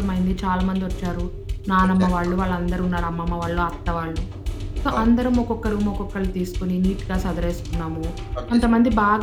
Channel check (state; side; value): identical; both; correlation 1.00